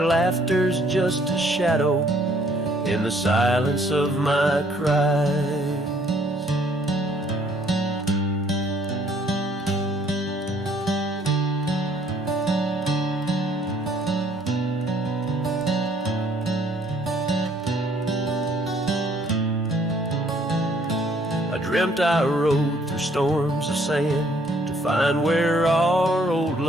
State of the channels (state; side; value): normal; both; correlation 0.63